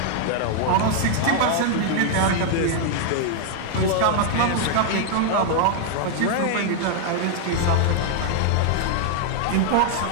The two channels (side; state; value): both; different; correlation 0.00